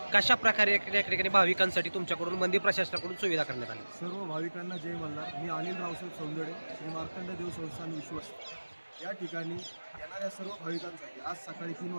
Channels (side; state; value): both; inverted; correlation -1.00